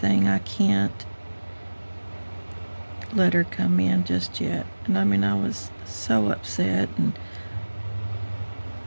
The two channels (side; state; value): both; inverted; correlation -1.00